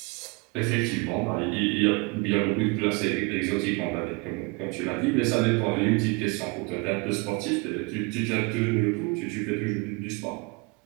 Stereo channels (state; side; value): quieter; left; 29.2 dB